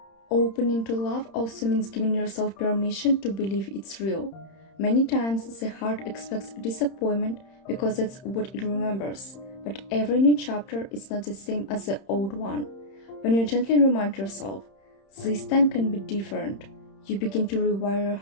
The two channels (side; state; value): right; late; 31 ms